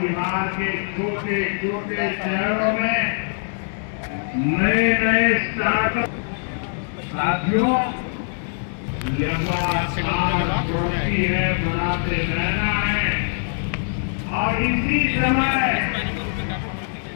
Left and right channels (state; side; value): silent; right; digital silence